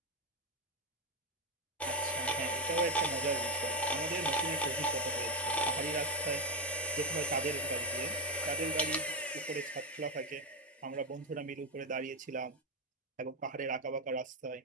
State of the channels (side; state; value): both; normal; correlation 0.06